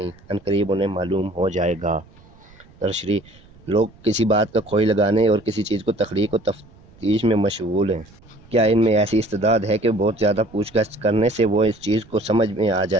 عنقریب انہیں معلوم ہو جائے گا۔ تشریح، لوگ کسی بات کا کھوئی لگانے اور کسی چیز کو تخلیق و تفتیش میں مشغول ہیں۔ کیا ان میں ایسی استعداد ہے کہ بہت زیادہ پوچھ گچھ کرنے سے وہ اس چیز کو سمجھ میں آ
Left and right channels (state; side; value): noise; right; rumble, 26 dB below the sound